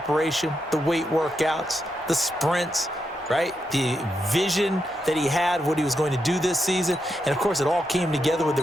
the weight workouts, the sprints, right? The vision that he had, what he was going to do this season. And, of course, it all came together with the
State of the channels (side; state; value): both; normal; correlation 0.84